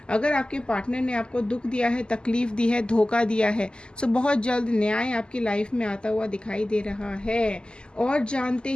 अगर आपके पार्टनर ने आपको दुख दिया है, तकलीफ़ दी है, धोखा दिया है, सो बहुत जल्द न्याय आपकी लाइफ में आता हुआ दिखाई दे रहा है। और जानते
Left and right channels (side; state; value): right; late; 0.048 ms